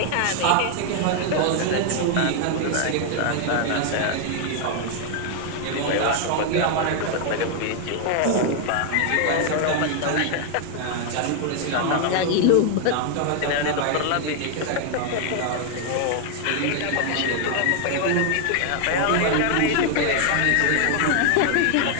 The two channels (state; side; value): different; both; correlation 0.00